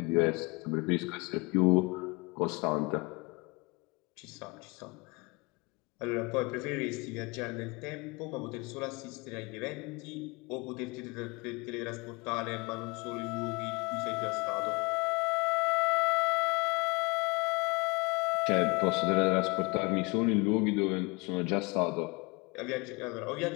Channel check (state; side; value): quieter; right; 27.8 dB